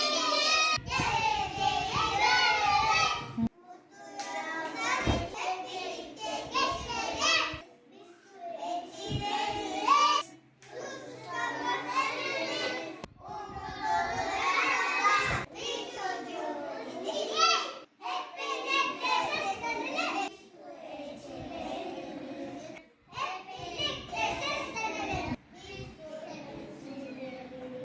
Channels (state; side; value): identical; both; correlation 1.00